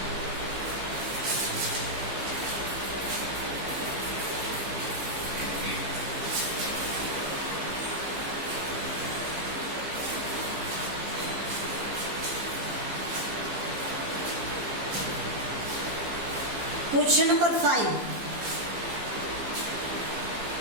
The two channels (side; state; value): left; late; 15 ms